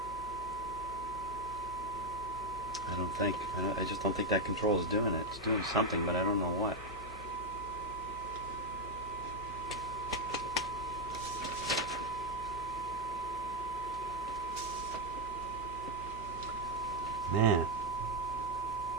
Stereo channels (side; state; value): both; normal; correlation 0.03